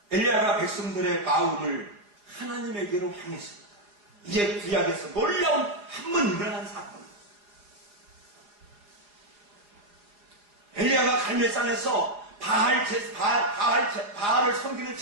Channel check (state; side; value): late; left; 4.9 ms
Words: 엘리야가 백성들의 마음을 하나님에게로 향했습니다. 이제 구약에서 놀라운 한 번 일어난 사건. 엘리야가 갈멜산에서 바알을 섬기는